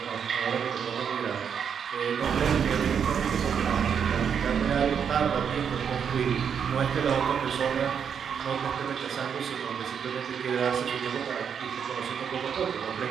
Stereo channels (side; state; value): left; quieter; 7.4 dB